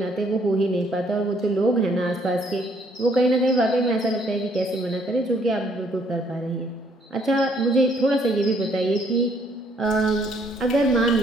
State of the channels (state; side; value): normal; both; correlation 0.66